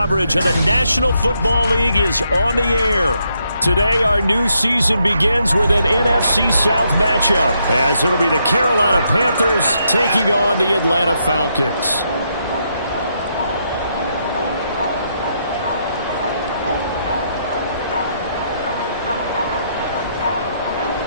of the National Football League is on the air. Today, our new season begins with an NFC South matchup, as it'll be the Carolina Panthers taking on the Atlanta Falcons.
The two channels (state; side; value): inverted; both; correlation -0.77